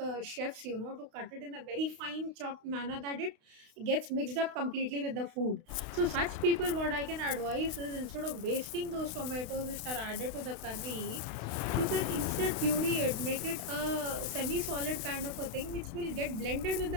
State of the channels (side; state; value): left; late; 32 ms